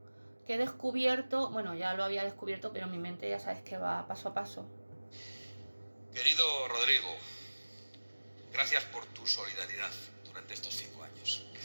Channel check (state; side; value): inverted; both; correlation -1.00